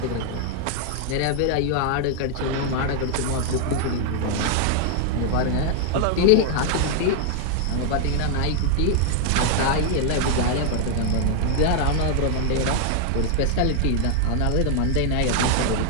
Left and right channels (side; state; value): both; different; correlation 0.00